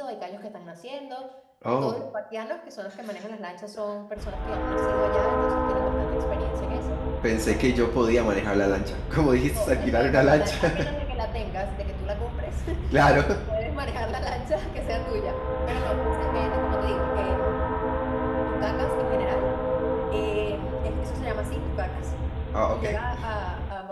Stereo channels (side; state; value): both; identical; correlation 1.00